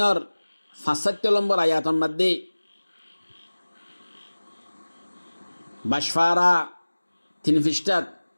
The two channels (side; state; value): both; inverted; correlation -1.00